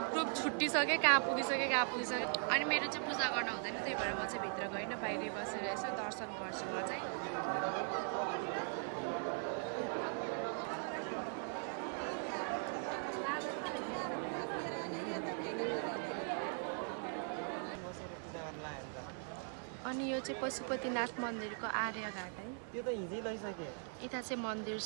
छुट्टिसक्यो कहाँ पुगिसक्यो अनि मेरो चाहिँ पूजा गर्न हुँदैन त्यही भएर म चाहिँ भित्र गइनँ बाहिरै बसेर यसो दर्शन गर्छु म चाहिँ अनि यो चाहिँ पशुपतिनाथ मन्दिरको आर्यघाट है यता चाहिँ मन्दिर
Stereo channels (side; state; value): left; silent; 51 dB below the other